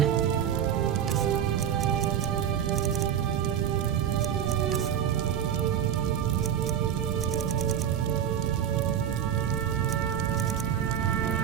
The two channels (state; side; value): quieter; left; 9.3 dB